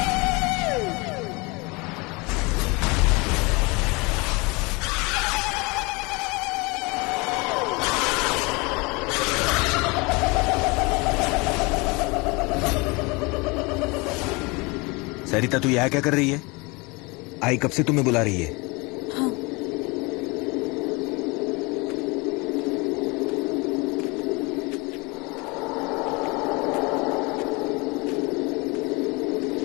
सरिता, तू यहाँ क्या कर रही है? आई कब से तुम्हें बुला रही है?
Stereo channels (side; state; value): right; quieter; 27.0 dB